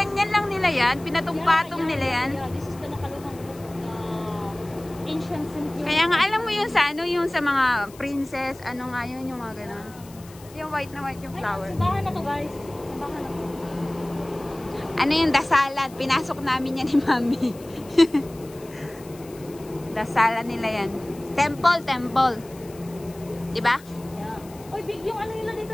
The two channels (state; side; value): noise; left; hiss, 22 dB below the sound